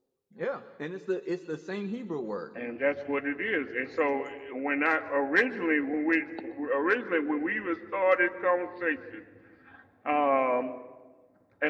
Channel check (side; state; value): both; identical; correlation 1.00